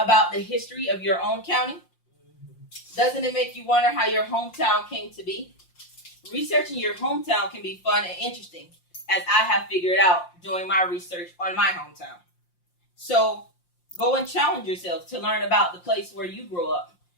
the history of your own county? Doesn't it make you wonder how your hometown came to be? Researching your hometown can be fun and interesting, as I have figured out doing my research on my hometown. So go and challenge yourself to learn about the place where you grew up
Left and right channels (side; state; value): right; late; 5.7 ms